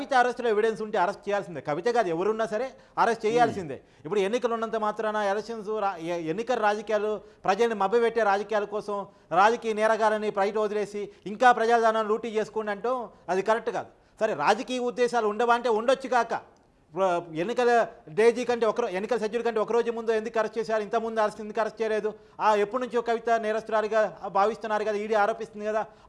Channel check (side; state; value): both; identical; correlation 1.00